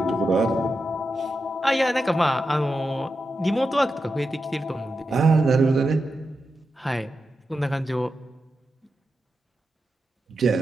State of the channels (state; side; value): normal; both; correlation 0.89